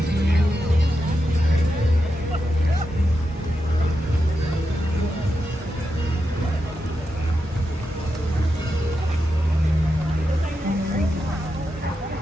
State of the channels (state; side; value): normal; both; correlation 0.87